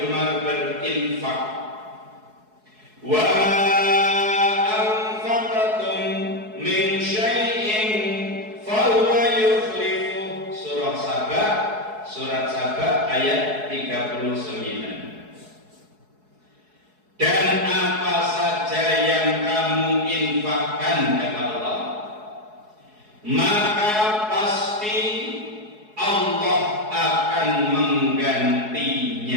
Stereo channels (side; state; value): left; late; 4.7 ms